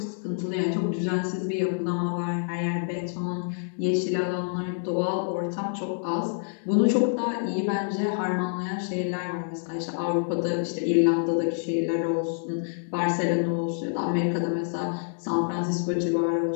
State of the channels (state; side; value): silent; right; digital silence